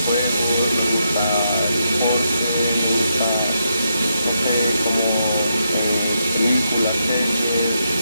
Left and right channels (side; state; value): both; inverted; correlation -0.81